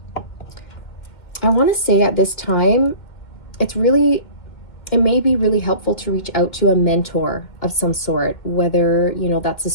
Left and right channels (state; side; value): late; right; 2.1 ms